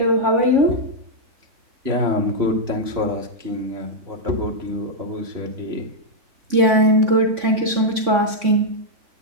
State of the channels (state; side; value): late; left; 3.5 ms